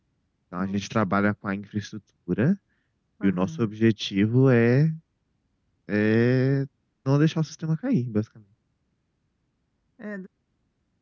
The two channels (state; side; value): identical; both; correlation 1.00